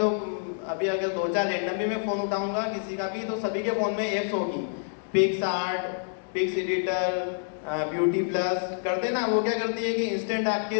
अभी अगर 2-4 रैंडम भी मैं फ़ोन उठाऊंगा किसी का भी, तो सभी के फ़ोन में ऐप्स होगी। PicsArt, pics editor, BeautyPlus करते ना, वो क्या करती है कि इंस्टेंट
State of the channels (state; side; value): silent; right; digital silence